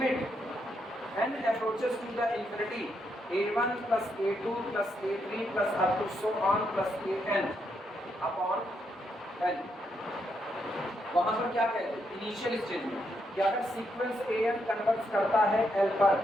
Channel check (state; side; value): normal; both; correlation 0.79